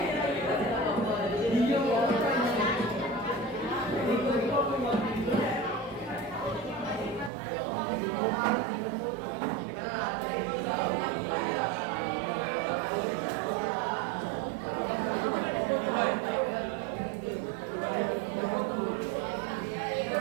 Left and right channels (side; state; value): left; drops out; at 7.3 s